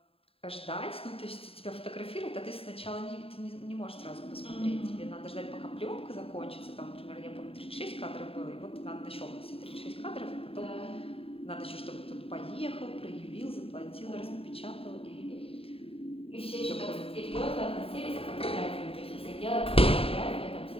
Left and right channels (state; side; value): late; right; 0.27 ms